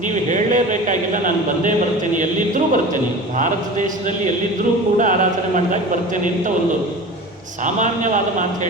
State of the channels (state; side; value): normal; both; correlation 0.35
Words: ನೀವು ಹೇಳಲೇಬೇಕಾಗಿಲ್ಲ, ನಾನು ಬಂದೇ ಬರ್ತೇನೆ, ಎಲ್ಲಿದ್ದರೂ ಬರ್ತೇನೆ, ಭಾರತ ದೇಶದಲ್ಲಿ ಎಲ್ಲಿದ್ದರೂ ಕೂಡ ಆರಾಧನೆ ಮಾಡಿದಾಗ ಬರ್ತೇನೆ ಅಂತ ಒಂದು ಸಾಮಾನ್ಯವಾದ ಮಾತು